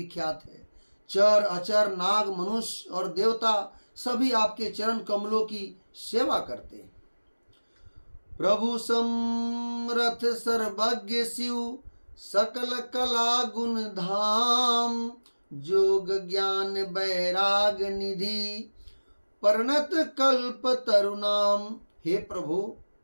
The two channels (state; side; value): inverted; both; correlation -1.00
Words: है। चर अचर नाग मनुष्य और देवता सभी आपके चरण कमलों की सेवा करते हैं। प्रभु समरथ सर्वज्ञ शिव, सकल कला गुण धाम। जोग ज्ञान बैराग निधि, परिणत कल्प तरुणाम। हे प्रभु,